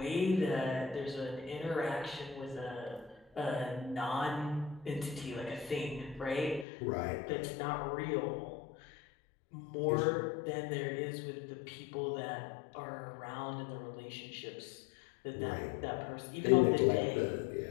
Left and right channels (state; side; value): drops out; right; at 6.7 s